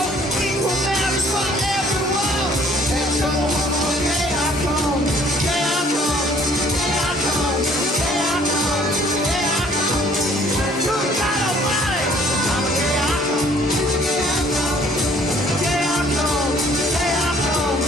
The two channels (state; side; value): normal; both; correlation 0.58